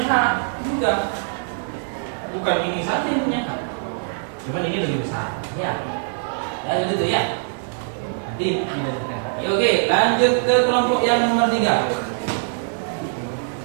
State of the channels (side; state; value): left; silent; digital silence